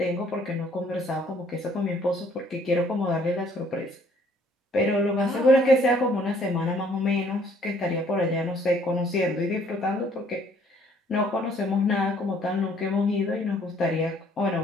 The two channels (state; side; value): normal; both; correlation 0.61